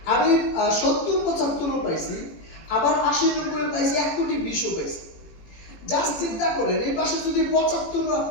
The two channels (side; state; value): right; late; 18 ms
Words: আমি 70-75 পাইছি, আবার 80-90 পাইছি, 1,20,00,000 পাইছি। জাস্ট চিন্তা করেন, এই পাশে যদি 75